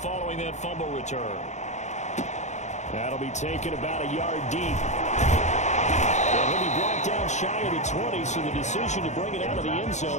following that fumble return. That'll be taken about a yard deep. And he'll be brought down shy of the 20, so the decision to bring it out of the end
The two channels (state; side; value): late; right; 0.34 ms